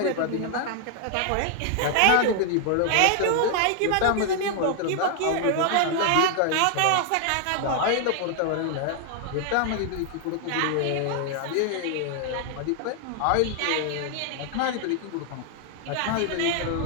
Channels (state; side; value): different; both; correlation 0.00